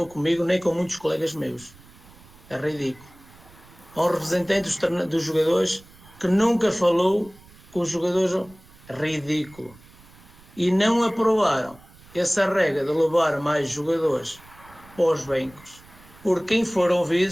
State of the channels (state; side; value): noise; right; rumble, 24 dB below the sound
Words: comigo, nem com muitos colegas meus. É ridículo. Há um representante dos jogadores que nunca falou com os jogadores. Ridículo. E não aprovaram essa regra de levar mais jogadores para os bancos, porque quem foram